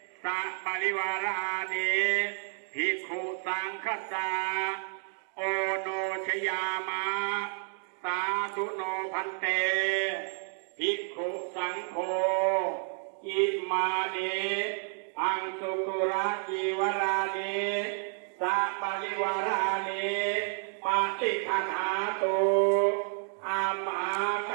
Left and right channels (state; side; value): silent; left; 57 dB below the other